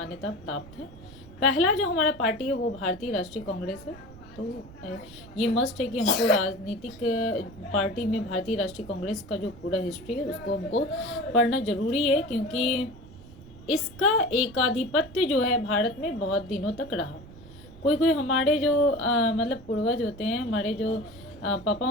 प्राप्त है। पहला जो हमारा पार्टी है वो भारतीय राष्ट्रीय कांग्रेस है। तो ये मस्ट है कि हमको राजनीतिक पार्टी में भारतीय राष्ट्रीय कांग्रेस का जो पूरा हिस्ट्री है उसको हमको पढ़ना जरूरी है, क्योंकि इसका एकाधिपत्य जो है भारत में बहुत दिनों तक रहा। कोई कोई हमारे जो मतलब पूर्वज होते हैं, हमारे जो पापा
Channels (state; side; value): noise; right; rumble, 18 dB below the sound